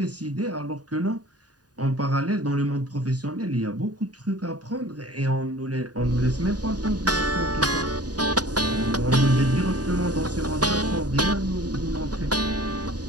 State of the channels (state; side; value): late; left; 0.68 ms